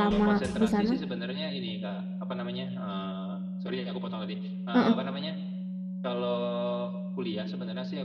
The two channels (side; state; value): both; identical; correlation 1.00